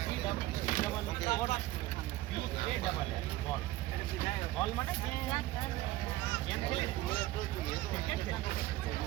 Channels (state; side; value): quieter; left; 16.5 dB